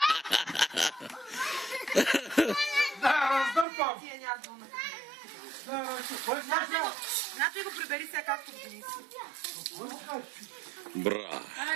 Да, раздърпам! Тия няма двуна. Да, Нато и го прибери сега както Денис. Бра!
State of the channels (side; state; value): left; drops out; at 3.7 s